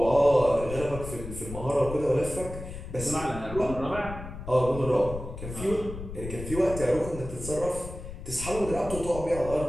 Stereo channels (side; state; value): left; noise; rumble, 10 dB below the sound